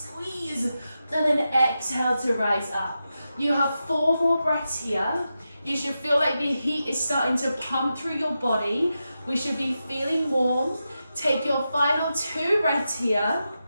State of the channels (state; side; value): inverted; both; correlation -0.89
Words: squeeze, and then exhale to rise up. You have 4 more breaths here. You should feel like the heat is starting to pump through your body. We should be feeling warm. Take your final 2 breaths here.